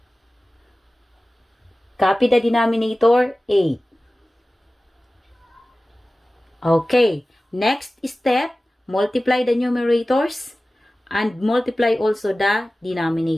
Copy the denominator 8. Okay, next step, multiply the numerators and multiply also the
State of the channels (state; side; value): normal; both; correlation 0.97